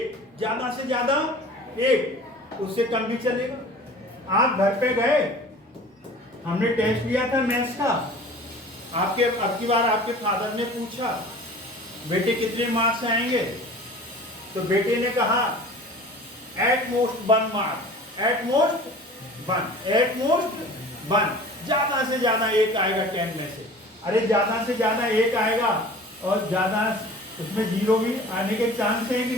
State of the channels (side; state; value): both; normal; correlation 0.43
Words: एक, उससे कम भी चलेगा। आप घर पे गए, हमने टेस्ट लिया था मैथ्स का, अब की बार आपके फादर ने पूछा बेटे कितने मार्क्स आएंगे, तो बेटे ने कहा at most 1 mark, at most 1, ज्यादा से ज्यादा एक आएगा 10 में से। अरे ज्यादा से ज्यादा एक आएगा और ज्यादा उसमें 0 भी आने के चांस है कि